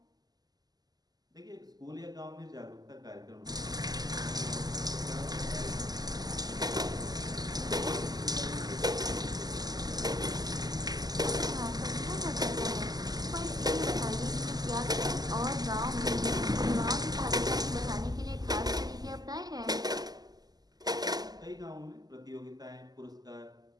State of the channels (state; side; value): late; left; 0.19 ms